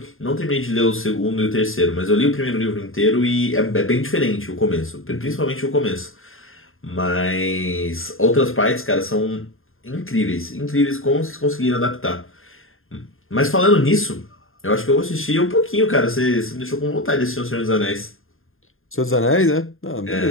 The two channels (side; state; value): right; late; 0.60 ms